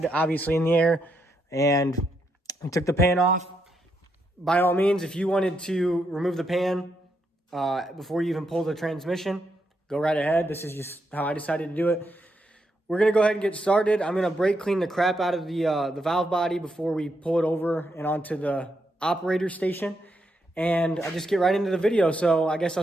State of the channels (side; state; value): both; normal; correlation 0.80